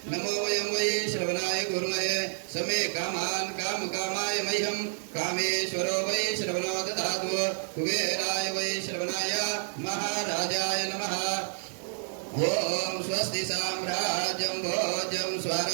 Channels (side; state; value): left; silent; 57 dB below the other